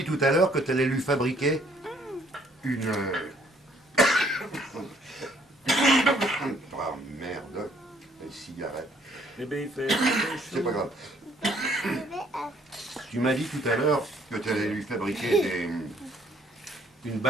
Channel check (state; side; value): normal; both; correlation 0.63